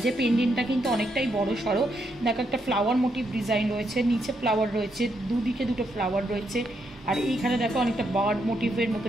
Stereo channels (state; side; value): normal; both; correlation 0.78